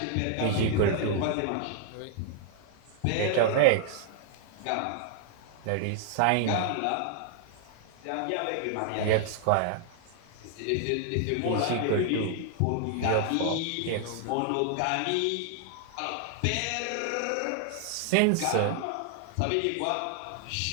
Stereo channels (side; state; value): both; different; correlation 0.00